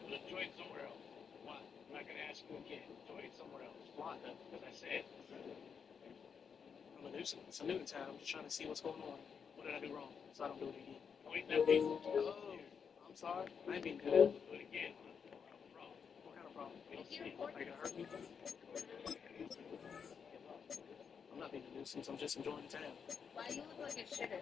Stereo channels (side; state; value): right; quieter; 6.6 dB